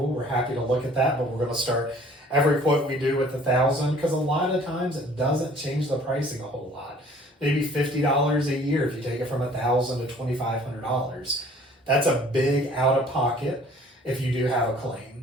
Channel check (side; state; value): both; normal; correlation 0.53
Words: we're happy to look at that, but we're going to start every quote we do with $1,000 because a lot of times it doesn't change the pricing a whole lot. Maybe $50 a year if you take it from $1,000 to $2,500. That's a big out of pocket if you do have a